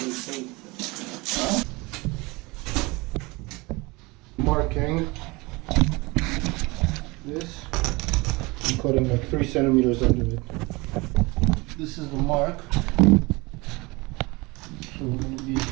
Marking this, I'm cutting like 3 centimeters under it. This is the mark, so we're going to be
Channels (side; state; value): left; quieter; 24.4 dB